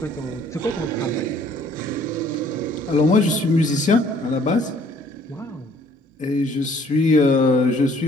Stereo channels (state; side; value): normal; both; correlation 0.59